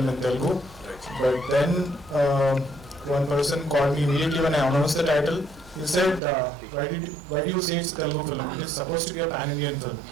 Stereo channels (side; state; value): left; drops out; at 6.2 s